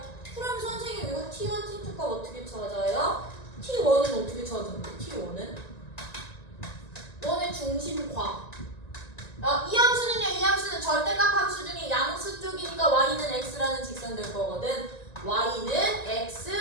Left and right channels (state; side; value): late; right; 1.9 ms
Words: 그럼 선생님 이거 T1, T2가 어떻게 찾아요? T1은 어떻게 찾는데? T1은? 너네 중심과 이 함수는요, 이 함수는 절대값 함수 중에 양수 쪽이니까 y는 x라는 직선 될 거거든. y는